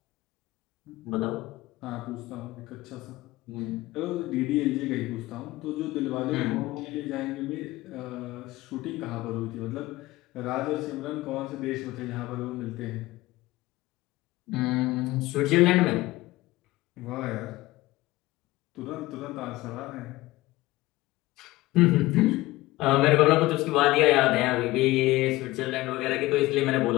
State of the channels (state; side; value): quieter; right; 18.8 dB